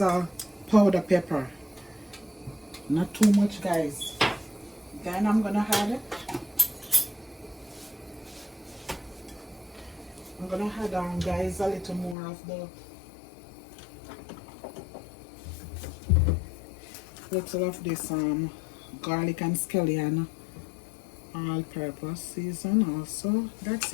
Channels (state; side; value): drops out; right; at 12.2 s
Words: a powder pepper, not too much guys. Then I'm gonna add guys, a little more of the little of this garlic and scallion all purpose season also. That's